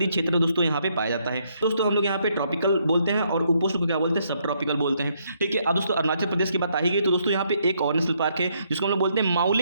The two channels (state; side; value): inverted; both; correlation -0.73